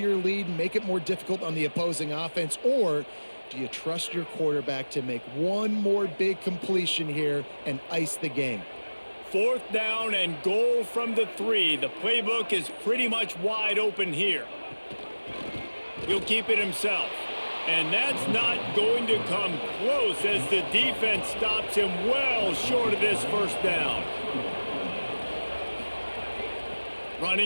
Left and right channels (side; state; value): both; inverted; correlation -1.00